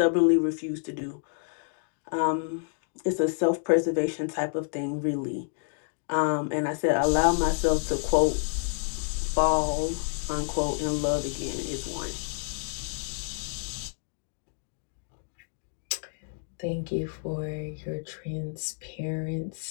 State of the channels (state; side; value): silent; right; digital silence